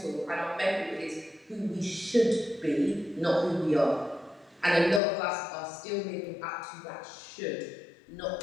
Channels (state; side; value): drops out; right; at 5.0 s